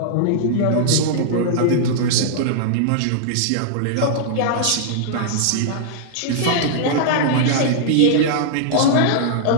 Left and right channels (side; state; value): both; different; correlation -0.01